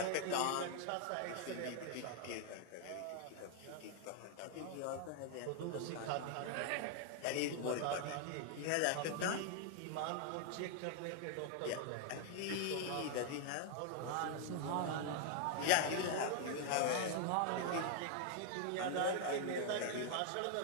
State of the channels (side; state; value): both; different; correlation 0.00